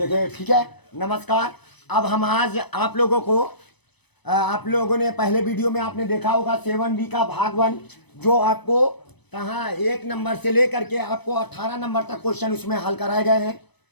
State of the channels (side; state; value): right; late; 0.99 ms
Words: ठीक है। नमस्कार। अब हम आज आप लोगों को आप लोगों ने पहले वीडियो में आपने देखा होगा 7B का भाग 1, जो आपको कहाँ 1 नंबर से लेकर के आपको 18 नंबर तक क्वेश्चन उसमें हल कराए गए हैं।